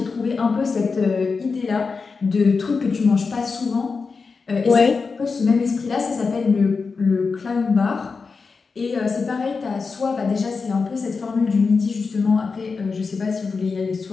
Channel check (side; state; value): right; quieter; 4.7 dB